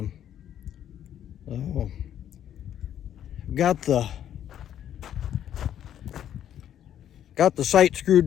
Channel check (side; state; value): right; quieter; 10.4 dB